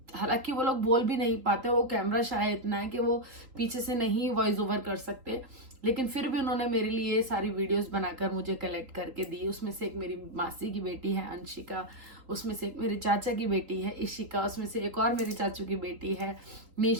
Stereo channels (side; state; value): left; late; 3.8 ms